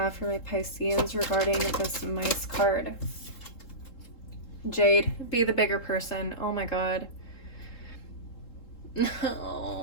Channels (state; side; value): late; right; 3.7 ms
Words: for my Pisceans regarding this mice card? Jade, be the bigger person. Oh my God.